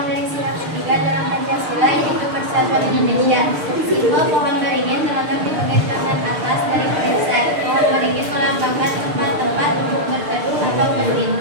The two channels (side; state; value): left; late; 6.7 ms